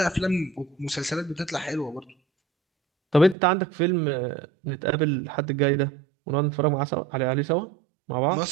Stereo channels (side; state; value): left; drops out; at 3.4 s